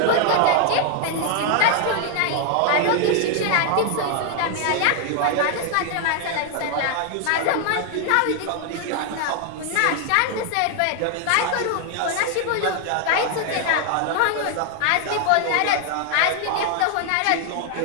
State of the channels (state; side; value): different; both; correlation 0.00